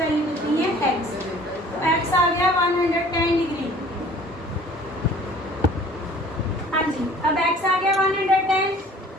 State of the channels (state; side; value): normal; both; correlation 0.50